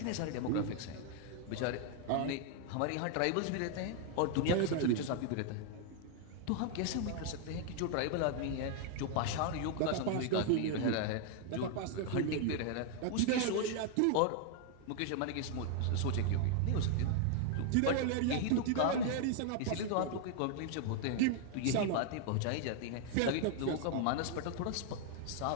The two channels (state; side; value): different; both; correlation 0.00